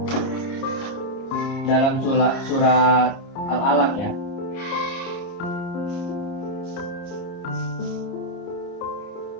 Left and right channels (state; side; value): late; right; 30 ms